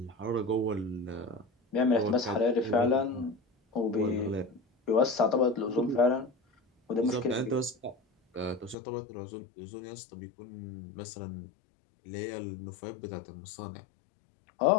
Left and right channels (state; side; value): drops out; right; at 8.8 s